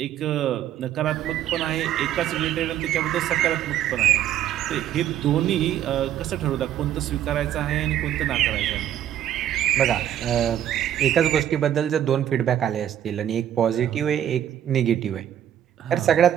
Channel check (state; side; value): quieter; left; 10.9 dB